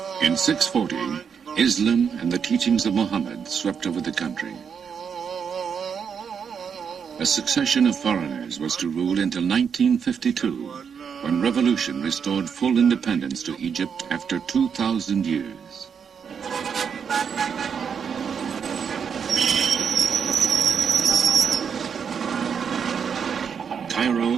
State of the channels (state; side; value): quieter; left; 6.9 dB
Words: In 640, Islam and the teachings of Muhammad swept over the country. A succession of foreigners was to rule until 1952, when revolution restored full independence to Egypt after 2,000 years.